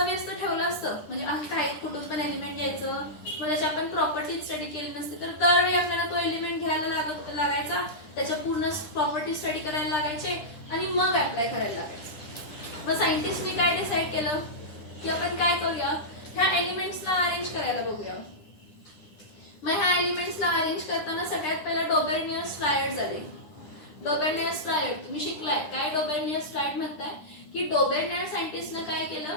ठेवलं असतं म्हणजे काही कुठून पण एलिमेंट घ्यायचं मग त्याची आपण प्रॉपर्टी स्टडी केली नसते तर दरवेळी आपल्याला तो एलिमेंट घ्यायला लागायचा, त्याच्या पूर्ण प्रॉपर्टी स्टडी करायला लागायचे आणि मग अप्लाय करायला लागायचं. मग सायंटिस्टनी काय डिसाईड केलं की आपण काय करूया ह्या एलिमेंट्सला अरेंज करायला बघूया. मग ह्या एलिमेंट्सला अरेंज करताना सगळ्यात पहिला डोबेर्नियस ट्रायड झाले. डोबेर्नियस ट्रायड तुम्ही शिकलाय काय? डोबेर्नियस ट्रायड म्हणताय की डोबेर्नियर सायंटिस्टने काय केलं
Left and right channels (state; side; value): late; right; 9.9 ms